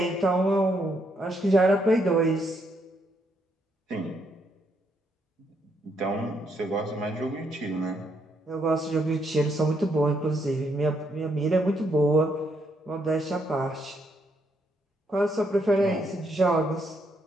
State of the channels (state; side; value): normal; both; correlation 0.75